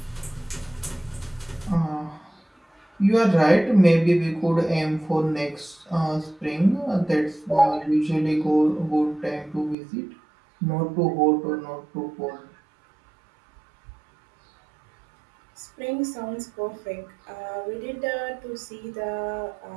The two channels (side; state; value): left; drops out; at 9.8 s